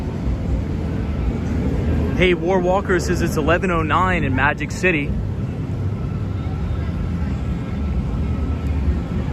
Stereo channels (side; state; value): both; identical; correlation 1.00